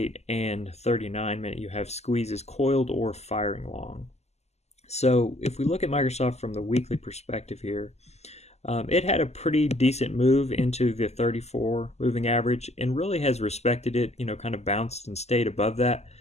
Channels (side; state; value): right; late; 0.32 ms